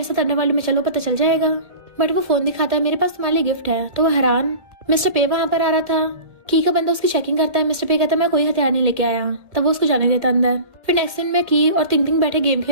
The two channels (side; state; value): left; late; 1.6 ms